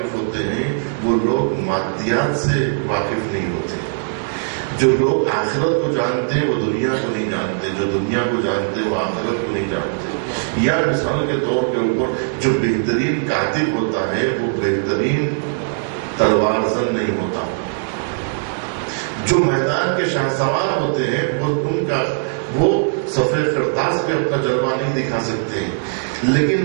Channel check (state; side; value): silent; left; digital silence